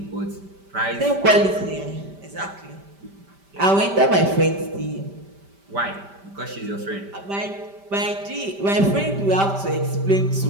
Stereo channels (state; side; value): late; left; 5.1 ms